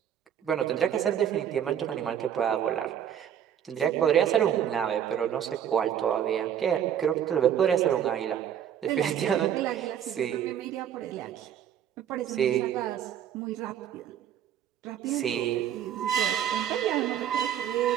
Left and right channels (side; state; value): left; quieter; 9.6 dB